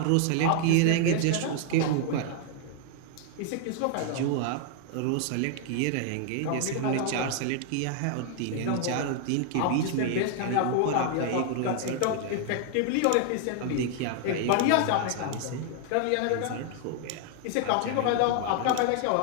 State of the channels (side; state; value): both; different; correlation 0.00